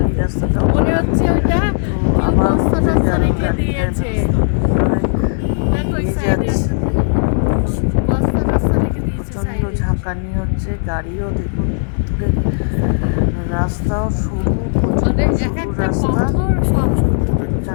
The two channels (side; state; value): right; silent; digital silence